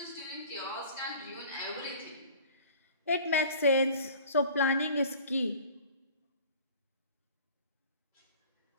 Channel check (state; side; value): inverted; both; correlation -0.45